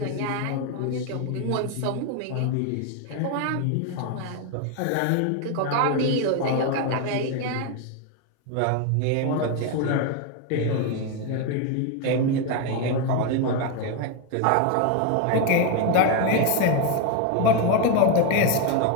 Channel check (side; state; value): both; different; correlation 0.01